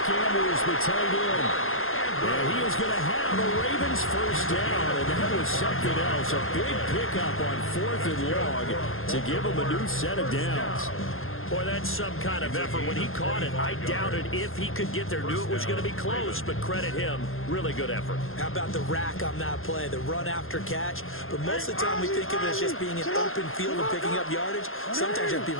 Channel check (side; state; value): right; late; 0.60 ms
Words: Andrews, the tight end. And he is going to have the Ravens first down, and that was something else. A big pickup on 4th and long to give them a new set of downs. Boy, that's some kind of effort. When he caught it, I doubted if he could get there. Knew it was going to be close, but credit him. Really good effort. How about the rack on that play, the run after catch? But most of the time we think of it as just being an open field and picking up yardage. Sometimes you have to be